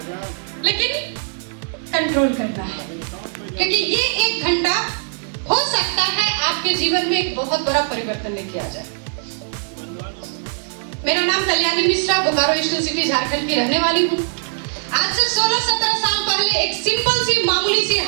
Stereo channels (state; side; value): silent; left; digital silence